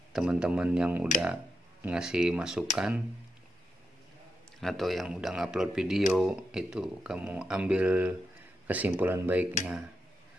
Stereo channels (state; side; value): normal; both; correlation 0.86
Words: teman-teman yang udah ngasih masukan atau yang udah ngupload video, itu kamu ambil kesimpulan baiknya.